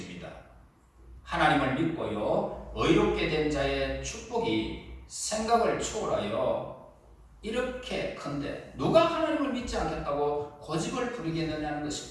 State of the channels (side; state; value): both; identical; correlation 1.00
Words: 하나님을 믿고요 의롭게 된 자의 축복이 생각을 초월하여 이렇게 큰데 누가 하나님을 믿지 않겠다고 고집을 부리겠느냐는